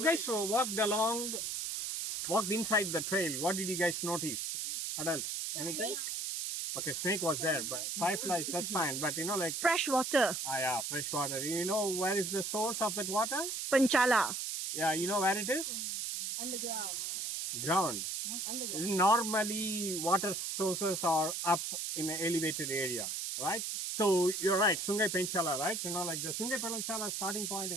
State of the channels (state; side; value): noise; right; hiss, 2 dB below the sound